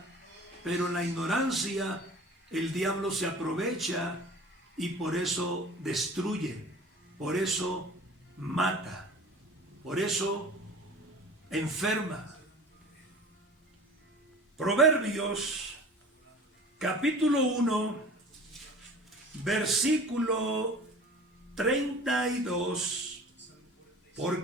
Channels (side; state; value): both; normal; correlation 0.42